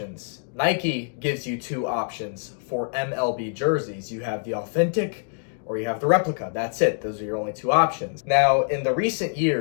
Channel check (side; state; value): right; silent; 57 dB below the other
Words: Nike gives you two options for MLB jerseys. You have the Authentic or you have the replica. That's it. Those are your only two options. Now, in the recent